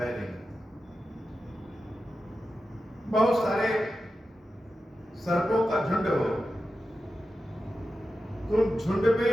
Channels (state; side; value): normal; both; correlation 0.91